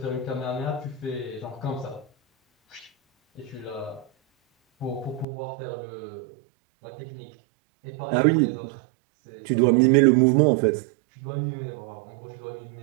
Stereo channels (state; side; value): drops out; left; at 5.2 s